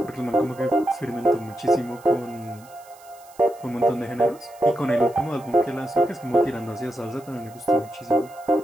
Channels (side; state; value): right; noise; hiss, 25 dB below the sound